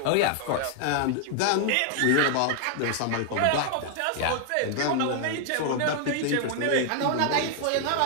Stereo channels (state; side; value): different; both; correlation 0.00